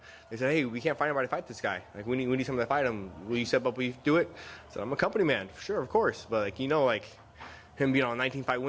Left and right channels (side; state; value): both; identical; correlation 1.00